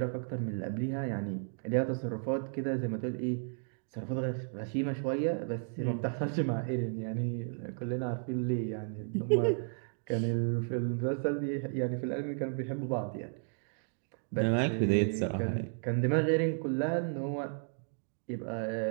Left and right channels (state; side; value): silent; left; digital silence